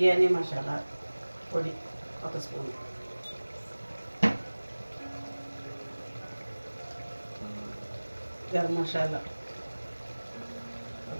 మసాలా పొడి 1 స్పూను. గరం మసాలా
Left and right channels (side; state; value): both; inverted; correlation -1.00